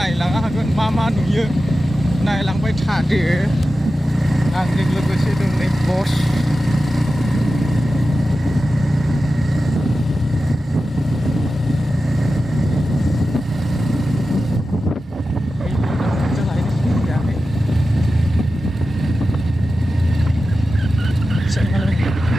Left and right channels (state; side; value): normal; both; correlation 0.93